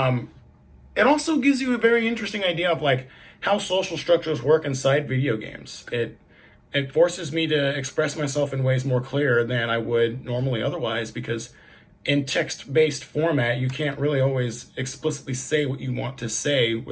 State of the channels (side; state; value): both; identical; correlation 1.00